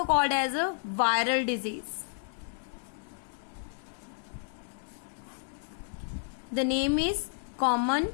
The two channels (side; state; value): right; silent; digital silence